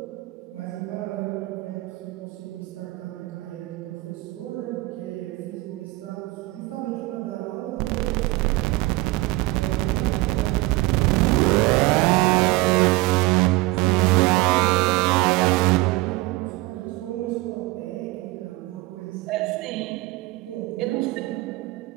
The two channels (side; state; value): left; quieter; 20.8 dB